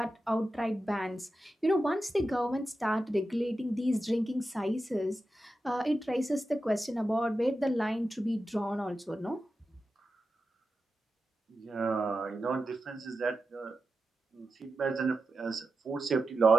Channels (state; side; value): normal; both; correlation 0.91